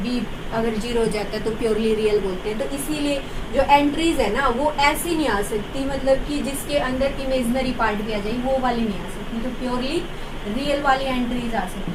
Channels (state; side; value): identical; both; correlation 1.00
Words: b अगर जीरो हो जाता है तो प्योरली रियल बोलते हैं। तो इसीलिए जो एंट्रीज है ना वो ऐसी नहीं आ सकती, मतलब कि जिसके अंदर इमेजनरी पार्ट भी आ जाए, वो वाली नहीं आ सकती। तो प्योरली रियल वाली एंट्रीज आ